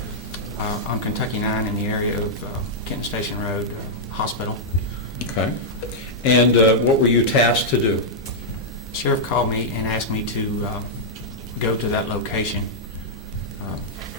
On Kentucky 9 in the area of Kenton Station Road Hospital. Okay. And what were you tasked to do? Sheriff called me and asked me to go to that location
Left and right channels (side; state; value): both; normal; correlation -0.07